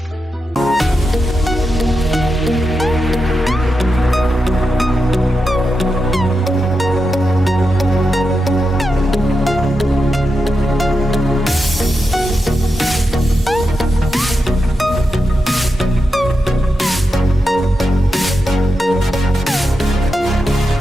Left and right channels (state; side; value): normal; both; correlation 0.88